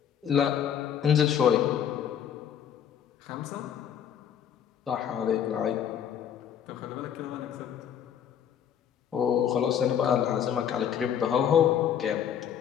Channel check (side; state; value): right; quieter; 9.0 dB